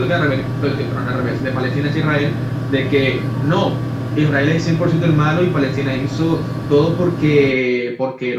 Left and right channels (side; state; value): both; identical; correlation 1.00